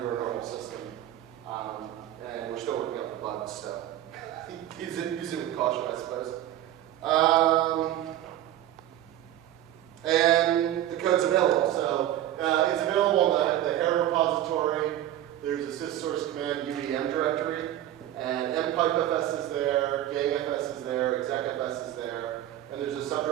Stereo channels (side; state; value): left; quieter; 12.8 dB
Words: a normal system. And we're still working out the bugs, so use it with caution, I suppose. And the code's available. So it's available in the Hair repository. There's a syssource command UEM directory, and mpipefs is there, gangfs is there, execfs is there, and there's a